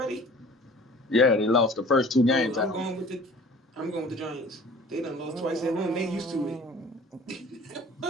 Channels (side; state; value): both; normal; correlation 0.47